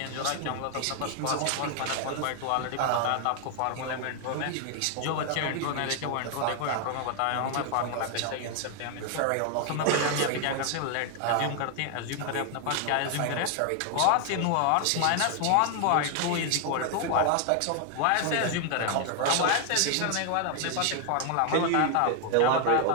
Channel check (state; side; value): different; both; correlation 0.00